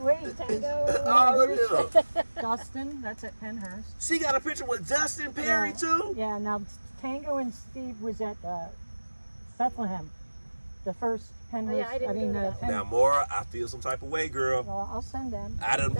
Wait. Tango. All of them. Dustin. That's at Penhurst. She got a picture with Dustin Perry too. Yeah. Now Tango and Steve was at Bethlehem, the first Penhurst. I didn't go to that one. Now, Mora, I feel some type of way, girl. Well, I'll send them. I done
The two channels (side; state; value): both; inverted; correlation -1.00